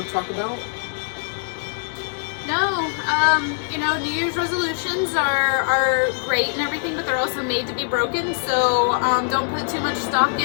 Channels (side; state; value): right; silent; 60 dB below the other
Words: to talk about? No, you know, New Year's resolutions are great and everything, but they're also made to be broken, so don't put too much stock